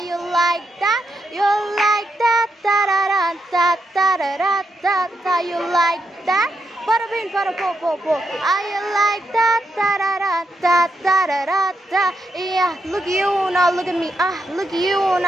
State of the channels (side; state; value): both; normal; correlation 0.82